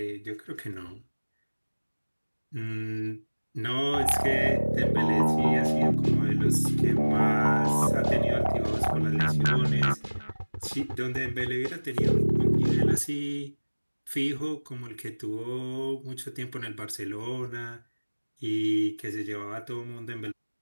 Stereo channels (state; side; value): inverted; both; correlation -1.00